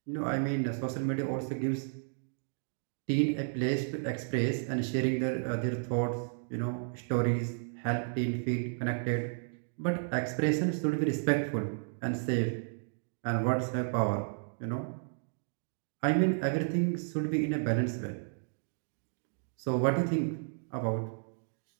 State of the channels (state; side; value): silent; left; digital silence